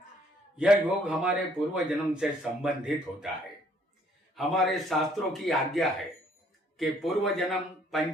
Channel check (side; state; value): both; normal; correlation 0.64